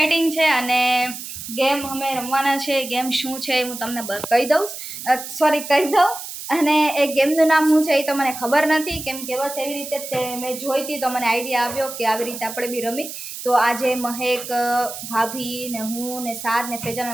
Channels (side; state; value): right; noise; hiss, 9 dB below the sound